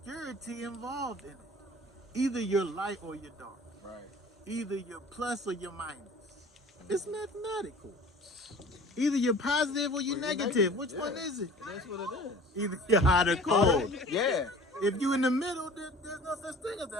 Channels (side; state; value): both; normal; correlation 0.45